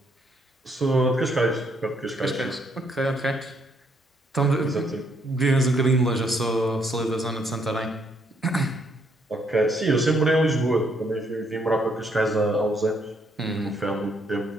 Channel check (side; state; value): both; normal; correlation 0.71